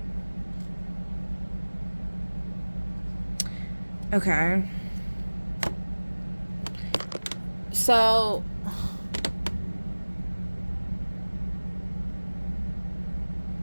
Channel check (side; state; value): both; inverted; correlation -1.00